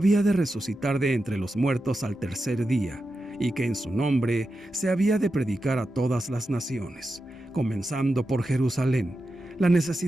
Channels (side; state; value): both; normal; correlation 0.90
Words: de resucitar de entre los muertos al tercer día, y que en su nombre se había de predicar a todas las naciones, comenzando por Jerusalén, la